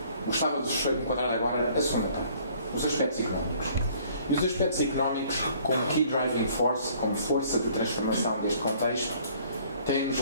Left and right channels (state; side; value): inverted; both; correlation -0.58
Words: gostava de enquadrar agora a segunda parte, os aspectos económicos. E os aspectos económicos, como key driving force, como força de transformação deste contexto, têm-nos